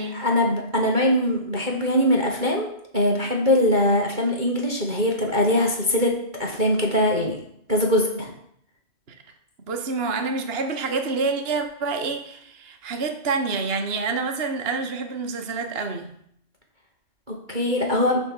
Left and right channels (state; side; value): late; left; 2.3 ms